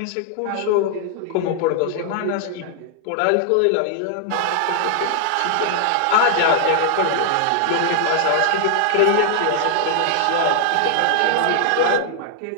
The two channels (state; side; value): different; both; correlation 0.00